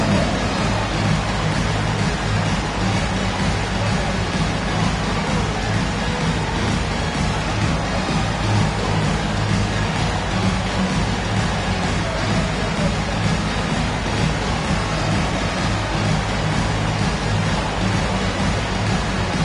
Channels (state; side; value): identical; both; correlation 1.00